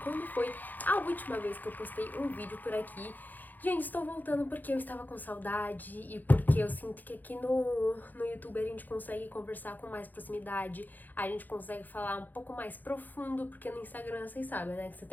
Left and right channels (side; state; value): right; late; 0.085 ms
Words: quando foi a última vez que eu postei um vídeo por aqui. Gente, estou voltando porque eu estava com saudade e porque eu sinto que aqui no YouTube a gente consegue conversar com mais proximidade, a gente consegue falar um pouco mais profundo, porque no Instagram vocês sabem, né, que você